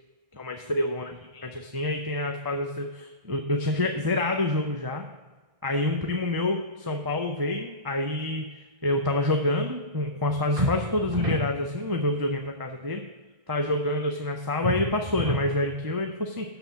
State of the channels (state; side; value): late; left; 1.6 ms